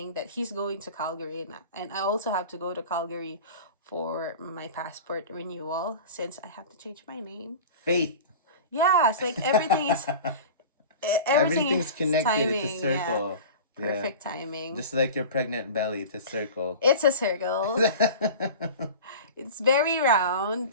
that he's going to Calgary, and I also have to go to Calgary for my passport renewal since I have to change my name. Faith. Yeah, it's like everything is Everything's connected. It's a timing. Yeah, circle. Yeah. perfect timing. Just like your pregnant belly, it's a circle. It's a circle. It's very round.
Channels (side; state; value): both; inverted; correlation -0.35